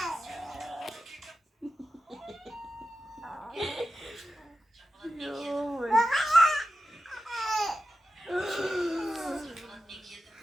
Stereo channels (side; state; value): both; normal; correlation 0.91